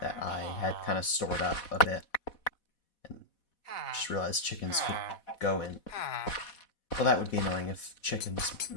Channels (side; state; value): right; late; 4.1 ms